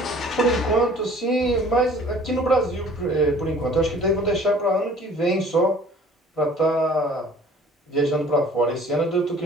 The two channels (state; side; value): normal; both; correlation 0.51